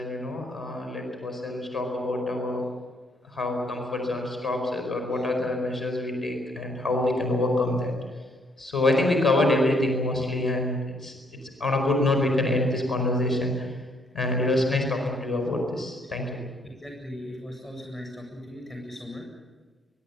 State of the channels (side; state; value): both; normal; correlation 0.68